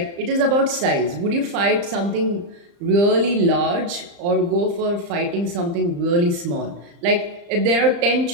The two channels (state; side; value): late; left; 35 ms